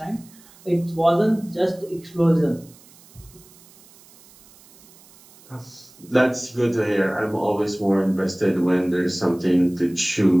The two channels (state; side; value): noise; right; hiss, 25 dB below the sound